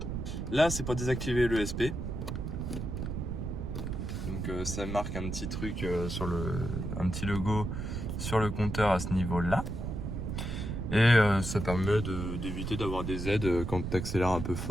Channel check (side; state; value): right; noise; rumble, 4 dB below the sound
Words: Là, c'est pour désactiver l'ESP. Donc ça marque un petit truc un petit logo sur le compteur à ce niveau-là. Et ça permet d'éviter d'avoir des aides quand tu accélères un peu